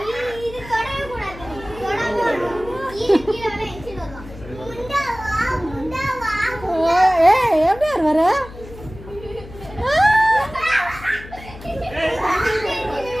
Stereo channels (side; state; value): left; noise; hum, 16 dB below the sound